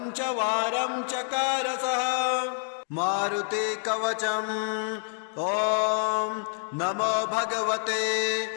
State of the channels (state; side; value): silent; right; 60 dB below the other